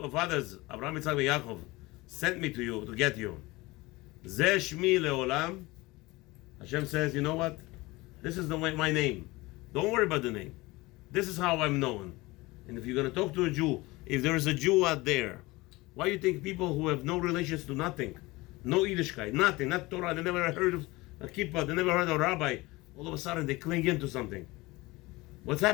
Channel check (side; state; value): right; quieter; 21.7 dB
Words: fathers, Abraham, Yitzchak, and Yaakov, sent me to you to get you. Zeh Shmi Leolam. Hashem says, you know what? This is my name. Don't worry about the name. This is how I'm known. And if you're going to talk to a Jew, if there is a Jew out there, why do you think people who have no relations to nothing, no Yiddishkeit, nothing, not Torah, they never heard of a kippah, they never heard of a rabbi, all of a sudden they cling into something? What's